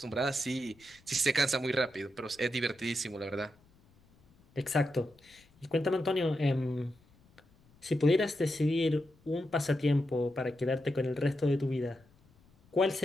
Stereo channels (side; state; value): left; noise; rumble, 30 dB below the sound